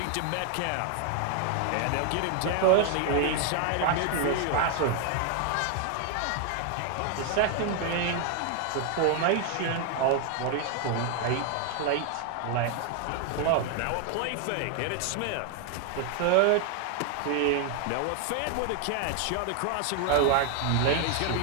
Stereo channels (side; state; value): both; different; correlation 0.00